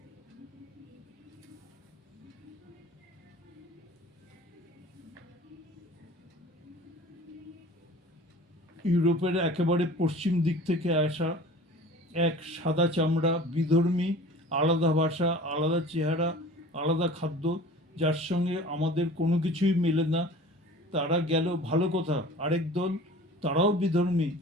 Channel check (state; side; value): normal; both; correlation 0.42